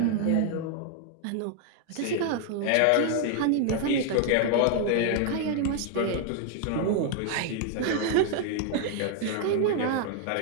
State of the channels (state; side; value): different; both; correlation 0.00